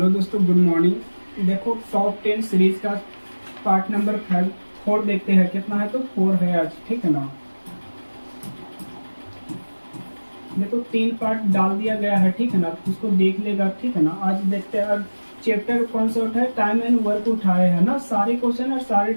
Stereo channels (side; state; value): both; inverted; correlation -1.00